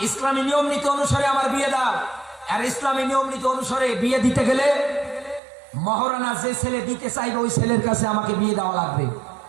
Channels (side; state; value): left; drops out; at 5.4 s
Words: ইসলামী নিয়ম নীতি অনুসারে আমার বিয়ে দাও। আর ইসলামী নিয়ম নীতি অনুসারে বিয়ে দিতে গেলে মহারানা যে ছেলে দিতে চাইবে ওই ছেলের কাছে আমাকে বিয়ে দেওয়া লাগবে।